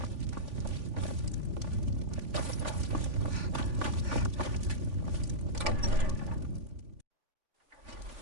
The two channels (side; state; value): left; late; 3.5 ms